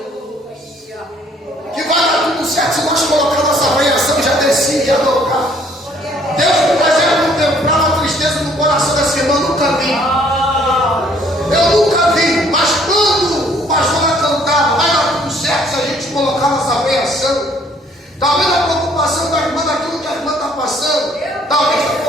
que vai dar tudo certo, se nós colocar nossa avaliação, já descia e ia tocar. Deus me fazia contemplar a tristeza no coração dessa irmã, nunca vi. Eu nunca vi, mas quando o pastor vai cantar, vai dar tudo certo se a gente colocar nossa avaliação. Talvez a preocupação da irmã daquilo que a irmã está passando, talvez está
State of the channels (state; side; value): normal; both; correlation 0.61